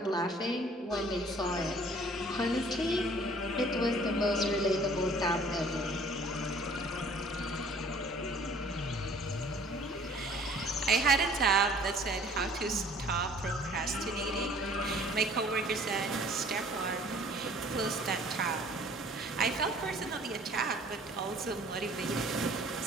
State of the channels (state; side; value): normal; both; correlation 0.53